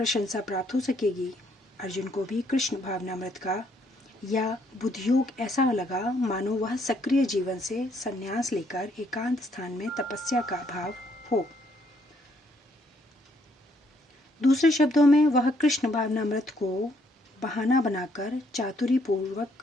प्राप्त हो सकेगी। अर्जुन को भी कृष्ण भावनामृत का या बुद्धियोग ऐसा लगा मानो वह सक्रिय जीवन से संन्यास लेकर एकांत स्थान में तपस्या का भाव हो। दूसरे शब्दों में वह कृष्ण भावनामृत को बहाना बनाकर चातुरी पूर्वक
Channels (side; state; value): both; normal; correlation 0.69